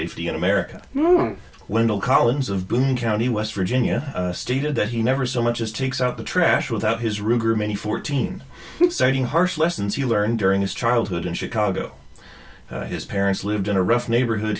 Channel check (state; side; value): identical; both; correlation 1.00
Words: in America. Wendell Collins of Boone County, West Virginia, stated that he never so much as takes out the trash without his Ruger Mini 14, citing harsh lessons he learned during his childhood in Chicago. His parents lived in a rough neighborhood,